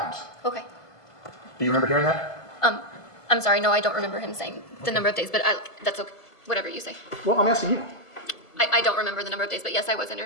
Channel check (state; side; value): late; right; 1.5 ms